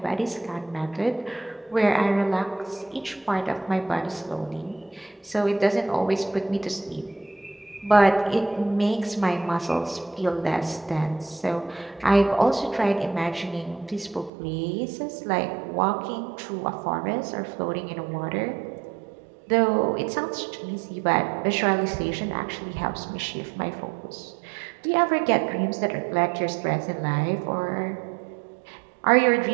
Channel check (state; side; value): drops out; left; at 14.3 s